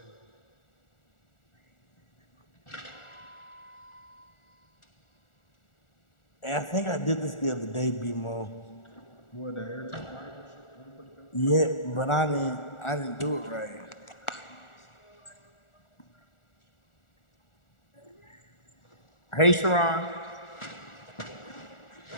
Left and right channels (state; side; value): late; right; 1.4 ms